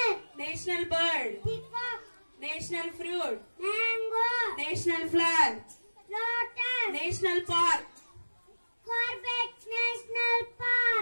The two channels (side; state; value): both; inverted; correlation -1.00